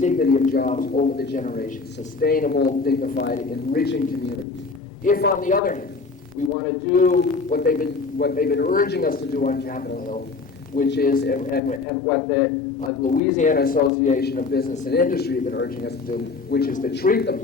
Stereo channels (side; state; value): right; quieter; 4.3 dB